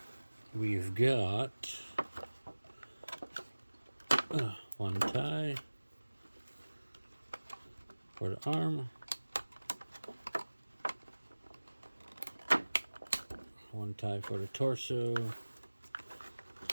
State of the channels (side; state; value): both; inverted; correlation -1.00